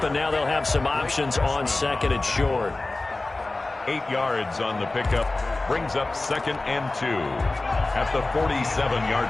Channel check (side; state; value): right; quieter; 3.1 dB